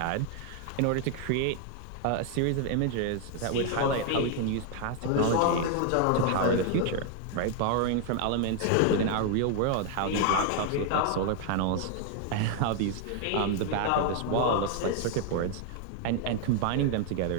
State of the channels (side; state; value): both; different; correlation 0.00